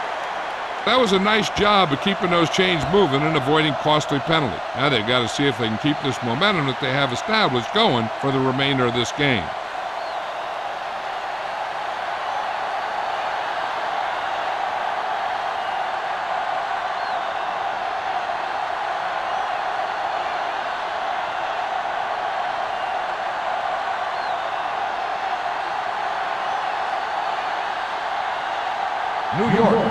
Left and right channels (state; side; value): identical; both; correlation 1.00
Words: That was a nice job of keeping those chains moving and avoiding costly penalty. Now they've got to see if they can keep this momentum that they have established going for the remainder of this game. New York